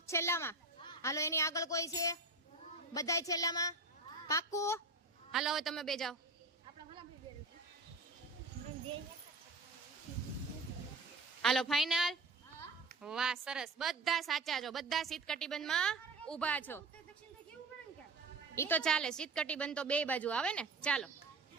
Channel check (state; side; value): quieter; left; 3.3 dB